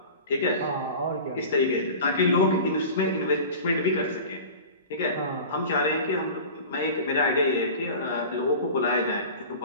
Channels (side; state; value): both; inverted; correlation -0.36